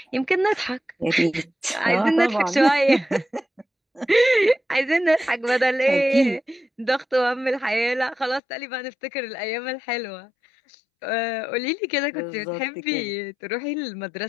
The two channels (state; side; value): drops out; right; at 8.4 s